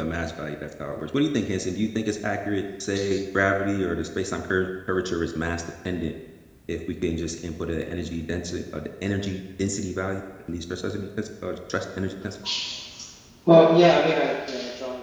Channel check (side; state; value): both; identical; correlation 1.00